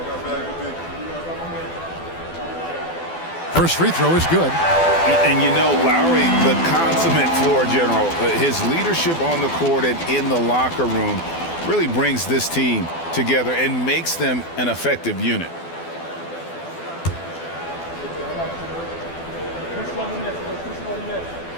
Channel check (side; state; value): right; late; 12 ms